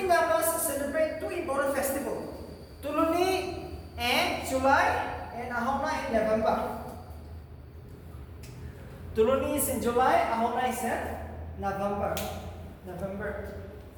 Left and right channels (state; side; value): identical; both; correlation 1.00